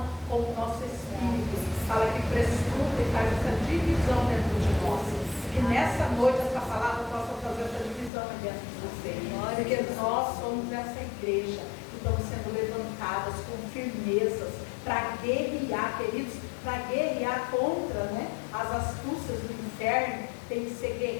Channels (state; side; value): drops out; right; at 8.1 s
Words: com o nosso espírito. Fala que prescruta e faz essa divisão dentro de nós. Que nessa noite essa palavra possa fazer essa divisão dentro de você. Porque nós somos essa igreja que estamos sendo levantadas com firmezas para guerrear, queridos, para guerrear contra, né, as astúcias do inferno. Tem que ser